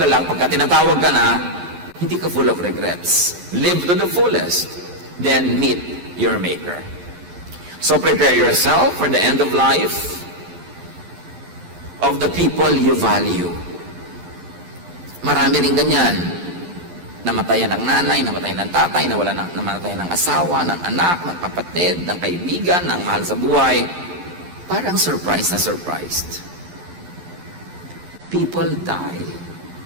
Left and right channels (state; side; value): late; left; 11 ms